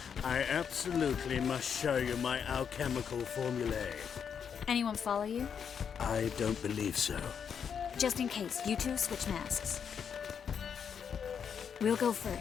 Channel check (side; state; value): right; quieter; 7.3 dB